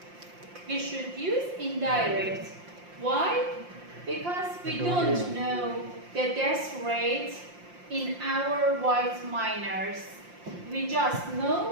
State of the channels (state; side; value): late; left; 5.7 ms